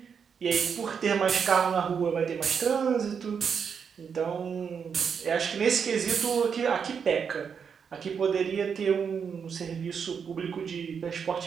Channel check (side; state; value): left; quieter; 6.7 dB